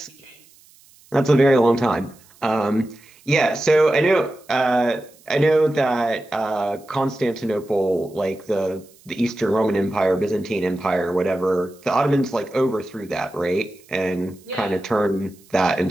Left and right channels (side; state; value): right; noise; hiss, 28 dB below the sound